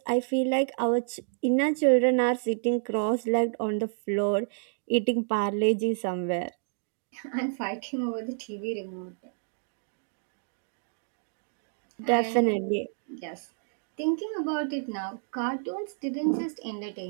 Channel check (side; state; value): left; silent; digital silence